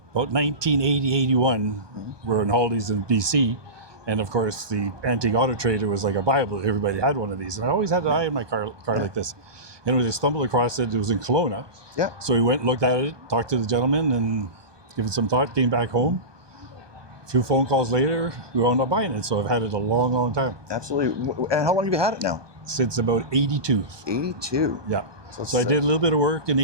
1980, 81, we're in holidays in BC. And of course, the antique auto trader was like a Bible. Everybody had one of these. And I always had an eye in my car like this. And when I stumbled across it, it was in Kelowna. Yeah. So we went, looked at it, talked to the gentleman, and gave it some thought, came back home. A few phone calls later, we wound up buying it. So I've had it a long, long time. Absolutely. And how long have you had it now? Since about 82. 82? Yeah. So I did a little bit of work in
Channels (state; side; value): late; left; 1.2 ms